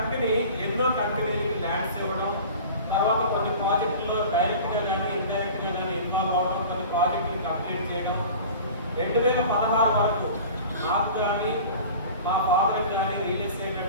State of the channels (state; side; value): inverted; both; correlation -0.39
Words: ఎన్నో కంపెనీలకి ల్యాండ్స్ ఇవ్వడం, తర్వాత కొన్ని ప్రాజెక్టుల్లో డైరెక్ట్గా కానీ ఇండైరెక్ట్గా కానీ ఇన్వాల్వ్ అవ్వడం, కొన్ని ప్రాజెక్టులు కంప్లీట్ చేయడం. 2016 వరకు నాకు కానీ మా ఫాదర్కి కానీ రియల్ ఎస్టేట్